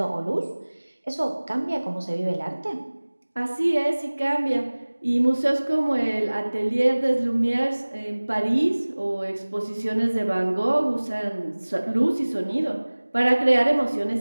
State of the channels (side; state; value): both; inverted; correlation -1.00